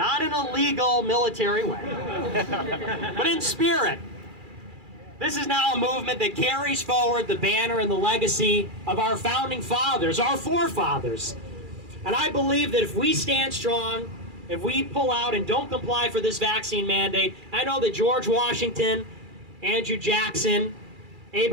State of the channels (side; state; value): left; late; 2.4 ms